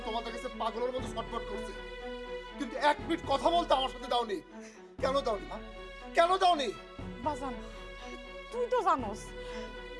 তোমাদের কাছে পাগলের মতো ছটফট করছে, কিন্তু এক মিনিট কথা বলতে আমার সাথে দাওনি। কেন দাওনি মা? কেন দাওনি? বাজান, তুই তো জানোস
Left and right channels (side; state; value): both; identical; correlation 1.00